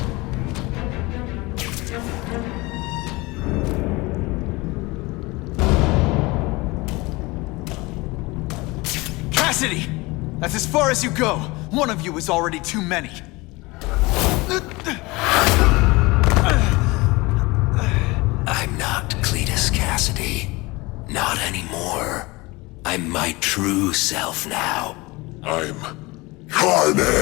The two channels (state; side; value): quieter; right; 23.3 dB